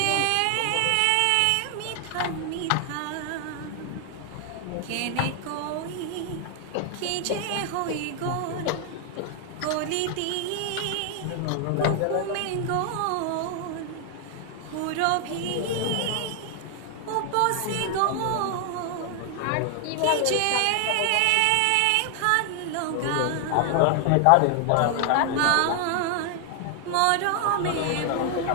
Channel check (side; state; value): both; different; correlation 0.00